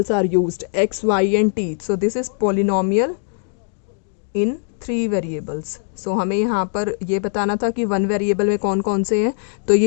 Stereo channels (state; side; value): silent; right; digital silence